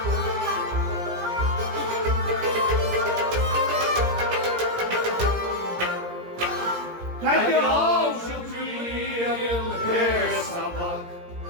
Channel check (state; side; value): late; left; 17 ms